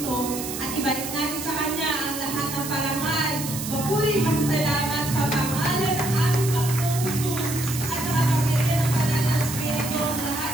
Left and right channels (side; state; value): right; noise; hiss, 7 dB below the sound